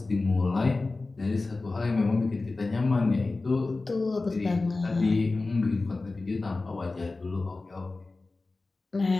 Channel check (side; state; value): right; quieter; 3.4 dB